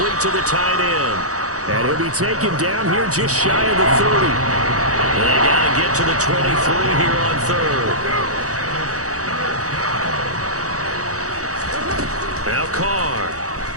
to the tight end. And he'll be taken down here just shy of the 30. They got to get to the 23 here on 3rd. Now Carr.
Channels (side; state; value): left; late; 0.66 ms